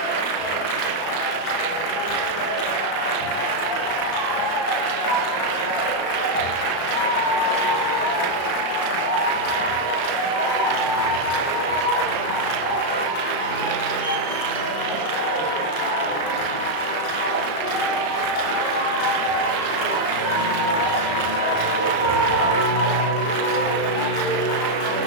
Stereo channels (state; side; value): late; right; 35 ms